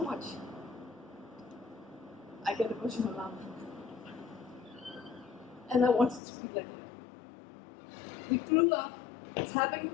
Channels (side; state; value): right; drops out; at 6.2 s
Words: much. I get emotional now. And I wanted to be like her. We grew up